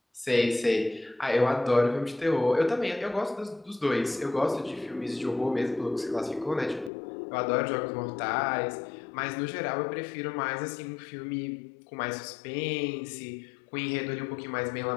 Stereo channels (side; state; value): right; drops out; at 6.9 s